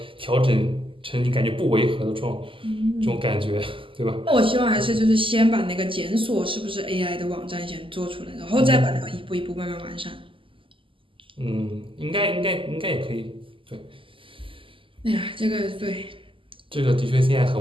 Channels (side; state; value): left; late; 0.25 ms